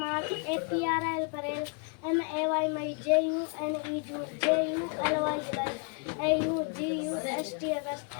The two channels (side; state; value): right; quieter; 36.1 dB